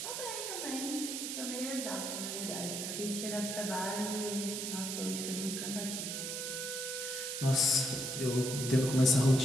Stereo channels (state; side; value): noise; right; hiss, 4 dB below the sound